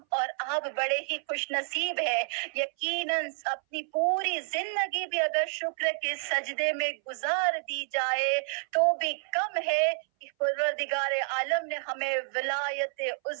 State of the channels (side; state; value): left; silent; 58 dB below the other